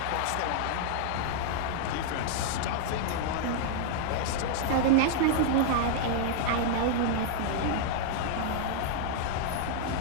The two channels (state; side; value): different; both; correlation -0.01